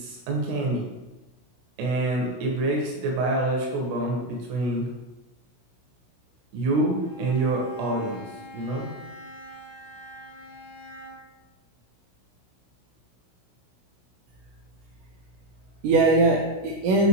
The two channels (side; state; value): left; late; 16 ms